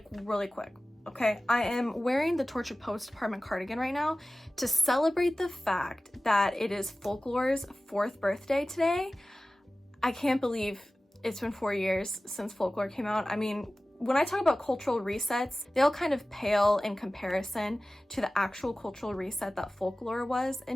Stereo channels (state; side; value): normal; both; correlation 0.96